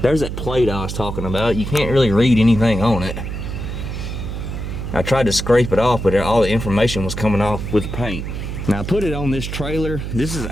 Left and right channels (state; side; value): noise; right; hum, 5 dB below the sound